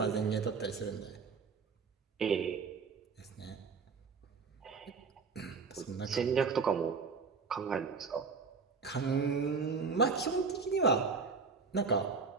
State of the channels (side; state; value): left; quieter; 5.0 dB